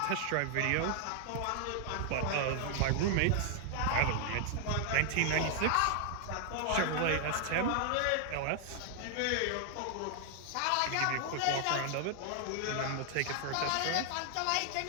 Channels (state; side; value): different; both; correlation 0.00